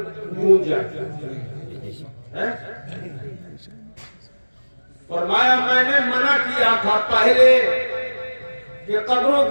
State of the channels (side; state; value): both; inverted; correlation -1.00